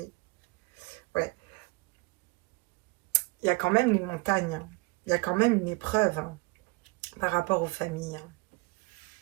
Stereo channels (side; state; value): left; quieter; 27.0 dB